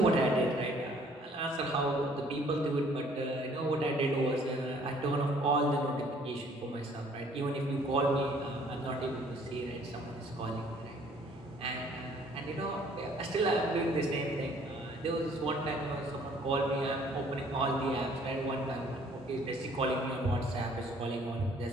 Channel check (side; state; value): both; normal; correlation 0.59